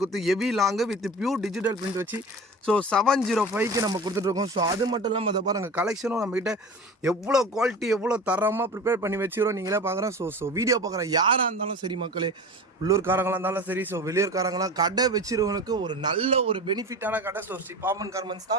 கொடுத்து heavy long with pure digital print வச்சு ஸோ 705க்கு நம்ம கொடுத்துட்ருக்கோம். ஸோ அது மட்டும் இல்லாமல் அதை பாருங்கள், கலெக்ஷனும் நம்மகிட்ட எவ்வளோ குவாலிட்டி எவ்வளோ தரமாக ப்ரிப்பேர் பண்ணி வச்சுக்கிறோம் நீங்களே பார்க்குறோம். ஸோ வீடியோ பார்க்குற யாராக இருந்தாலும் சரி மக்களே, உள்ளூர்காரங்களாக இருந்தாலும் சரி, ஸோ வெளியூர்காரங்களாம் கடை வச்சிருவனுக்கு ஒரு நல்ல ஒரு பெனிஃபிட்டான கடை ஸோ ஸ்ரீ பாமன் கார்மெண்ட்ஸ்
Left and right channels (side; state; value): both; normal; correlation 0.33